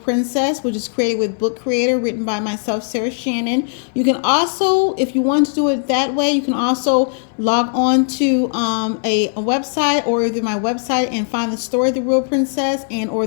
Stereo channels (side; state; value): right; silent; 64 dB below the other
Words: which is created with Book Creator, written by myself, Sarah Shannon. You can also, if you want to do it that way, you can also log on to a website or either my website and find the story The Real Princess and or